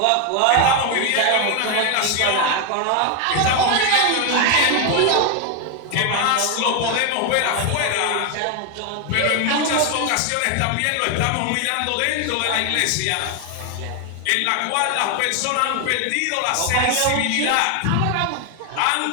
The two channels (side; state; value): both; different; correlation 0.01